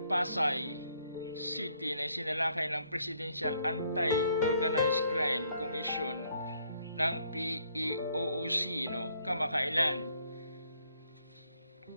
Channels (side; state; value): both; inverted; correlation -0.69